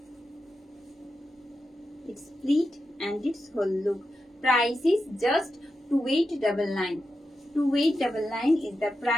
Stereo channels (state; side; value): normal; both; correlation 0.89